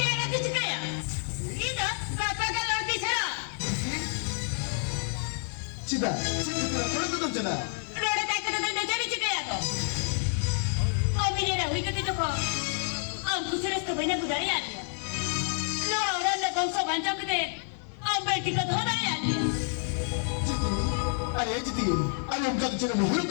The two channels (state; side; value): silent; right; 59 dB below the other